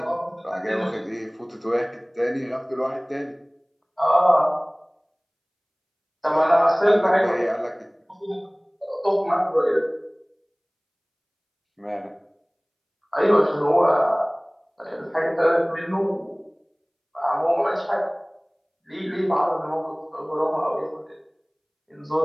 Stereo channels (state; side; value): identical; both; correlation 1.00